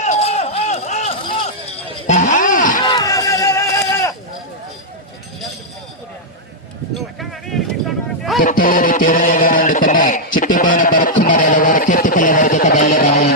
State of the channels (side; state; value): both; normal; correlation -0.05